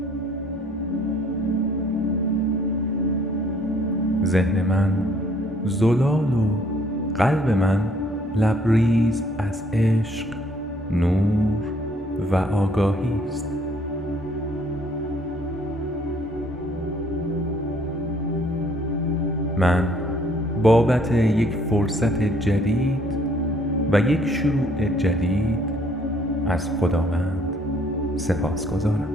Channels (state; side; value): normal; both; correlation 0.62